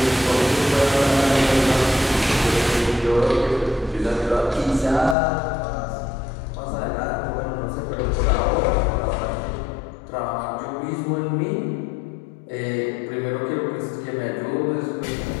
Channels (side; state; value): right; drops out; at 5.2 s